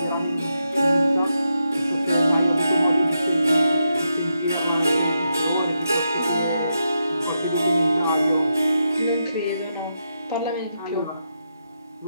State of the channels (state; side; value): inverted; both; correlation -0.84